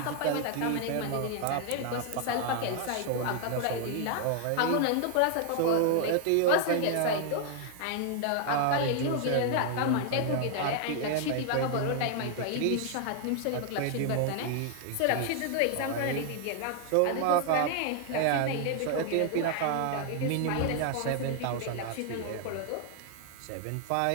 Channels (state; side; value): different; both; correlation 0.00